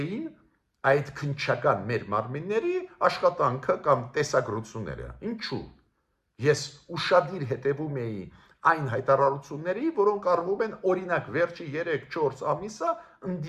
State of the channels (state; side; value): identical; both; correlation 1.00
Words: այդ քննչական մեր մարմինների աշխատանքը կամ տեսագրությունները։ Ինչու՞։ Ես ուշադիր հետևում էի այն հայտարարությունների, որոնք արվում են օրինակ վերջի 3-4 ամիսը